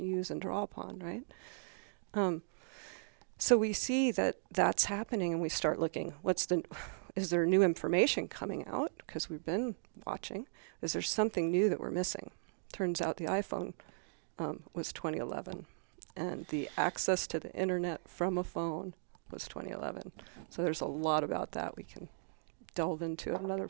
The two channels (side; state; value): left; silent; digital silence